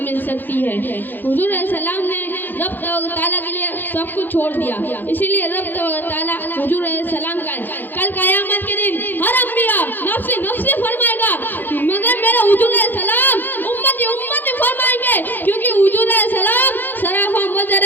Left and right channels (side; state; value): right; late; 0.089 ms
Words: मिल सकती है। हुजूर सलाम ने रब तआला के लिए सब कुछ छोड़ दिया, इसीलिए रब तआला हुजूर सलाम का कल क़यामत के दिन हर अंबिया नफ्सी नफ्सी फरमाएगा, मगर मेरा हुजूर सलाम उम्मती उम्मती फरमाएंगे, क्योंकि हुजूर सलाम सराफा